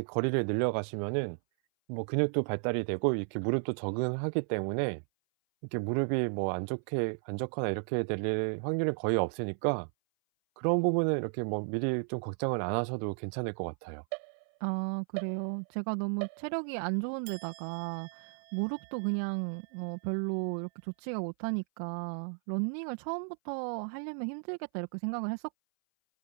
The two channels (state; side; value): silent; left; 55 dB below the other